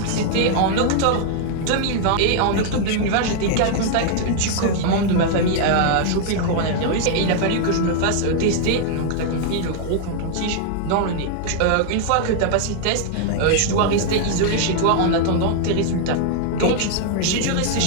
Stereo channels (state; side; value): different; both; correlation 0.00